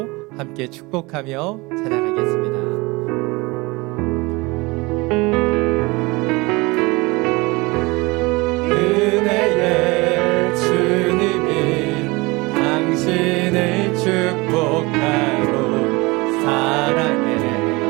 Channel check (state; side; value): quieter; left; 24.3 dB